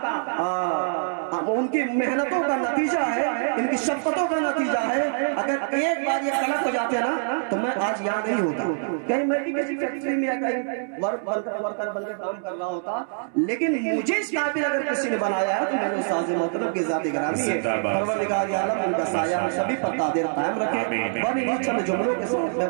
ان کی محنتوں کا نتیجہ ہے، ان کی شفقتوں کا نتیجہ ہے۔ اگر ایک بار یہ غلط ہو جاتے نا تو میں آج یاد نہیں ہوتا، کہیں میں بھی کسی فیکٹری میں ورکر بن کے کام کر رہا ہوتا، لیکن مجھے اس قابل اگر کسی نے بنایا ہے تو میں نے استاذ محترم کی ذاتی گرامی ہے۔ پروردگار عالم ان کا سایہ سبھی پر قادر قائم رکھے۔ بڑی ہی چند جملوں کے ساتھ میں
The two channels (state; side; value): silent; left; digital silence